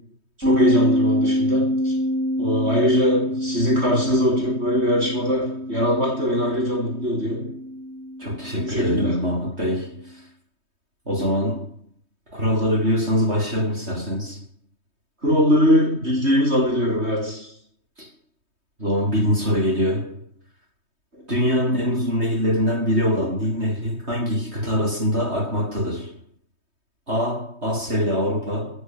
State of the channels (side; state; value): left; late; 3.2 ms